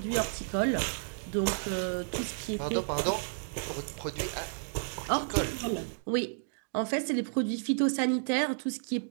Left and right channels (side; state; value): left; silent; digital silence